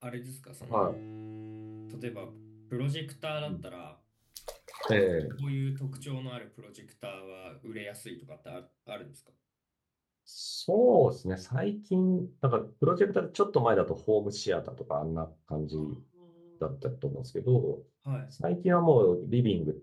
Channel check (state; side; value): identical; both; correlation 1.00